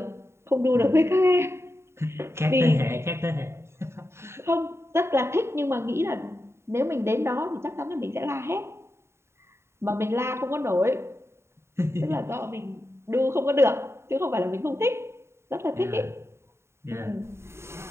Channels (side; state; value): left; late; 0.13 ms